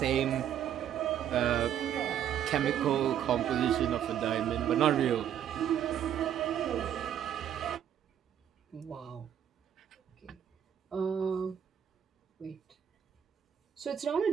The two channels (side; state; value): left; quieter; 9.7 dB